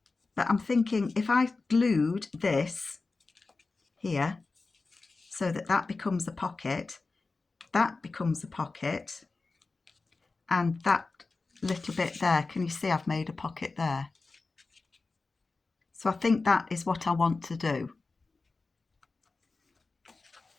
But I'm thinking if I glued this here so that that becomes a pocket, that becomes a pocket, and that little bit there, can you see I've made a pocket there? So I think that is what I want to do.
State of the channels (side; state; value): right; quieter; 3.8 dB